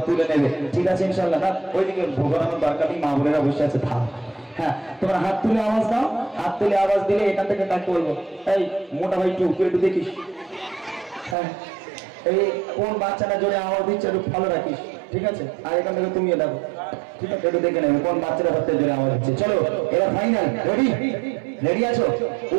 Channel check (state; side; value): drops out; left; at 11.4 s